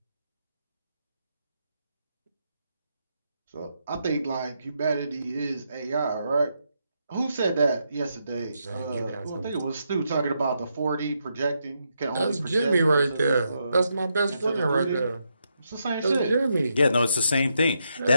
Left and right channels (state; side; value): inverted; both; correlation -0.81